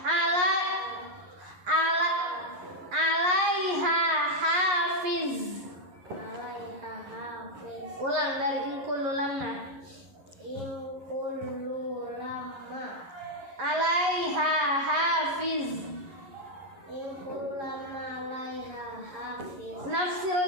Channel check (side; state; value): left; late; 11 ms